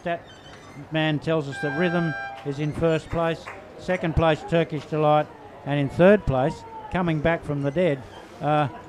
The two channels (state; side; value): identical; both; correlation 1.00